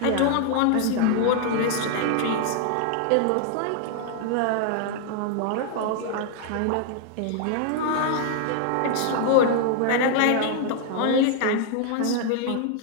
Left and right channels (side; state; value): both; different; correlation 0.00